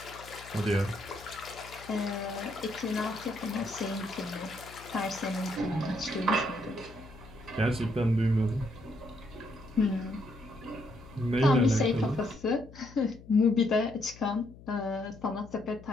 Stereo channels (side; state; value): left; noise; hum, 19 dB below the sound